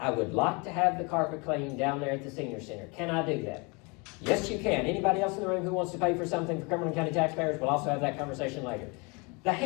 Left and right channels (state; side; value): quieter; right; 29.8 dB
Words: would like to have the carpet cleaned down there at the senior center. Can I do that? Yes, you can. Anybody else in the room who wants to pay for something for Cumberland County taxpayers, we'll also have that conversation later. The